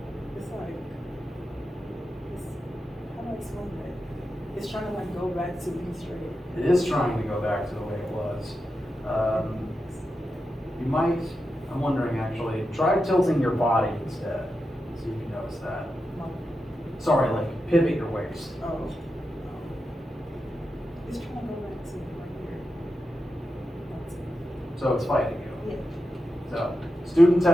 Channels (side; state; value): both; normal; correlation 0.89